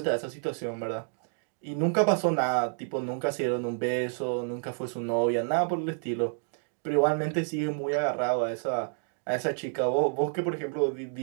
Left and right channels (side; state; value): left; silent; digital silence